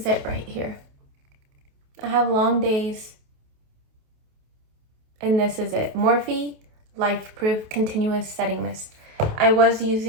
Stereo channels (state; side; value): late; left; 28 ms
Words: it right here. I have long days. And this is it. Morphe Life Proof Continuous Setting Mist.